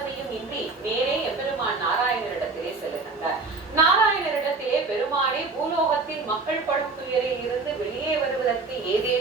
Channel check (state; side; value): quieter; left; 3.9 dB